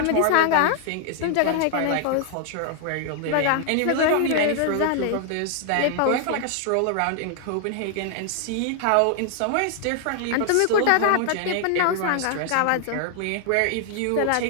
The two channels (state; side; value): different; both; correlation 0.00